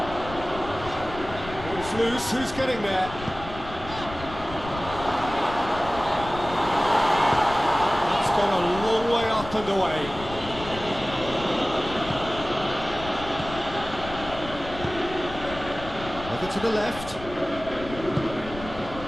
It's loose, who's getting there? It's gone a long way up and away. Over to the left.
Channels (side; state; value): left; noise; rumble, 13 dB below the sound